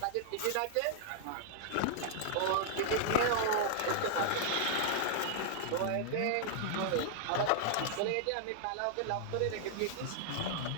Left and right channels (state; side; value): different; both; correlation -0.01